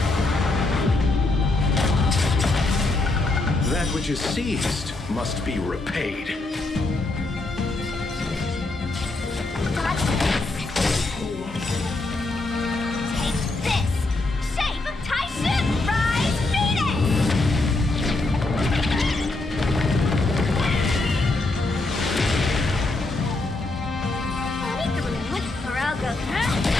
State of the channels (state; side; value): quieter; right; 3.1 dB